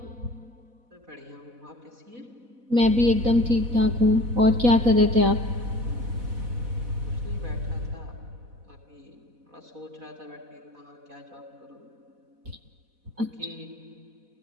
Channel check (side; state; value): left; late; 4.1 ms